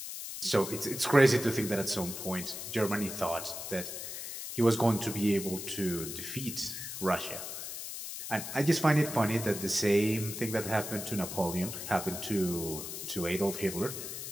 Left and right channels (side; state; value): left; noise; hiss, 7 dB below the sound